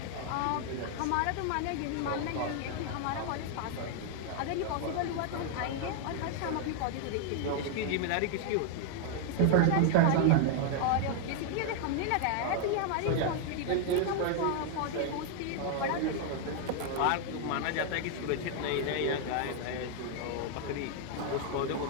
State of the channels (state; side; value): different; both; correlation 0.00